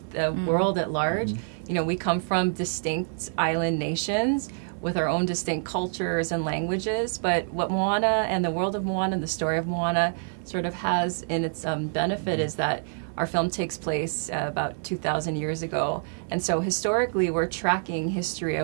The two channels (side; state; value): left; silent; digital silence